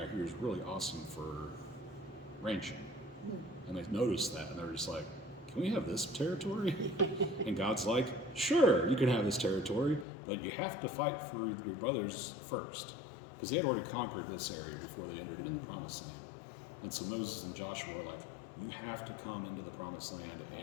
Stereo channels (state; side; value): drops out; right; at 10.1 s